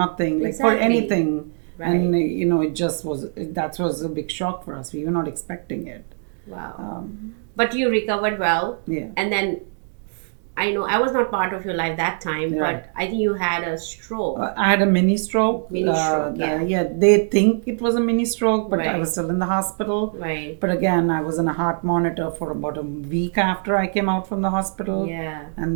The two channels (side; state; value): left; silent; digital silence